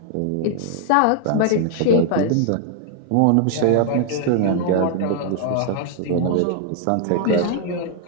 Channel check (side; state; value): both; different; correlation 0.00